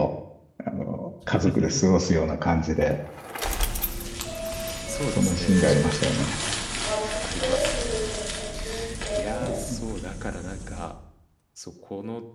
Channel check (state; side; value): identical; both; correlation 1.00